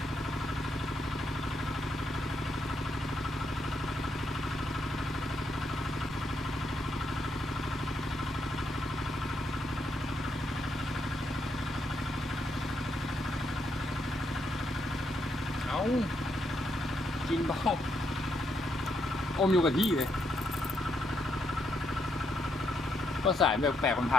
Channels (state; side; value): normal; both; correlation 0.78